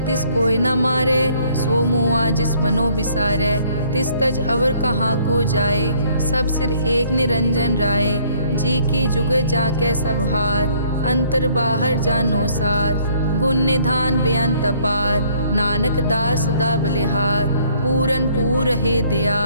कोई न मारे, सो मुआ जिस मनो बिसारे। तिस तज अवर कहाँ को जाए, सब सिर एक निरंजन राय। जी की जुग जाके सब हाथ, अंतर बाहर जानो साथ। गुण निधान बेअंत अपार, नानक दास सदा बलिहार। पूरन पूर है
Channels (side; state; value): both; inverted; correlation -0.62